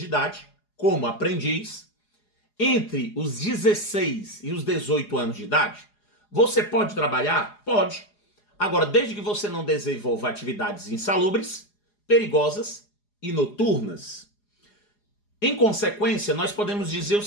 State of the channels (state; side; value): late; right; 4.8 ms